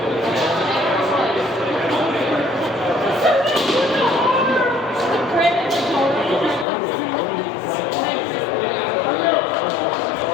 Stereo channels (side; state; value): right; drops out; at 6.7 s